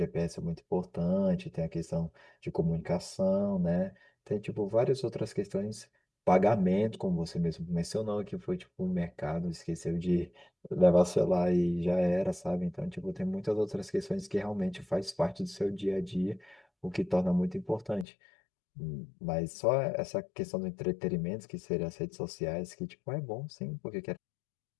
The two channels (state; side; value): drops out; right; at 18.1 s